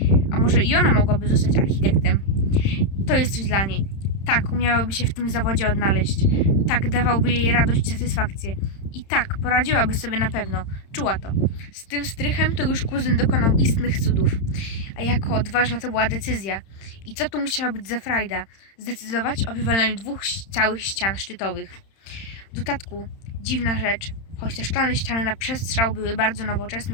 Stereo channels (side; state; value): right; late; 31 ms